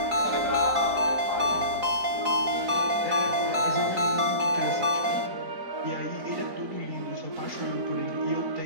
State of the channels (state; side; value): late; left; 4.0 ms